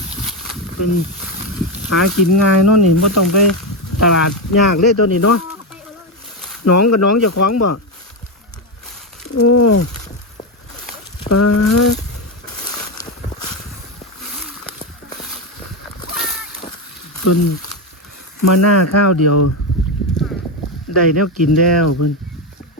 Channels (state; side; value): normal; both; correlation 0.10